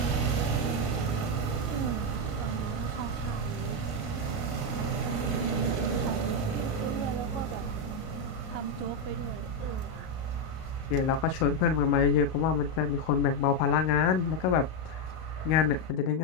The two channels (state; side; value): late; right; 38 ms